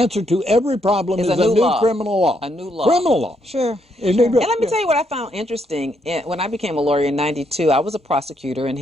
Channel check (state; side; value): normal; both; correlation 0.75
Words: to every problem is a new law. criminal law. A new law. Criminal law. Sure. And And let me tell you what I found interesting. When I became a lawyer in '92, I was a prosecutor in